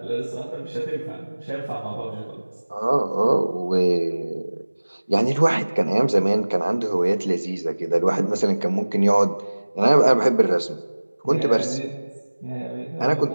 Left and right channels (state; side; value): inverted; both; correlation -1.00